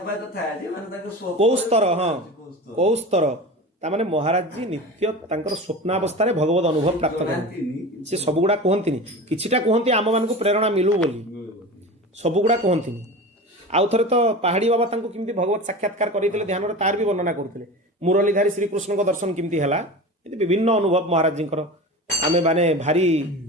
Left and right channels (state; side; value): normal; both; correlation 0.31